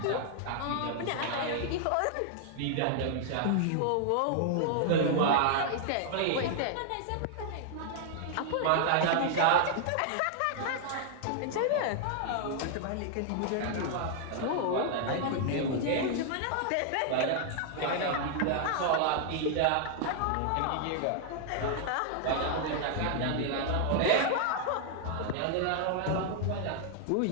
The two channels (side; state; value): both; different; correlation 0.00